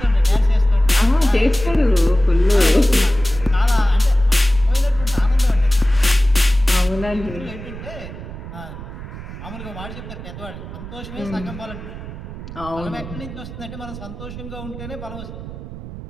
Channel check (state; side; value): noise; right; rumble, 12 dB below the sound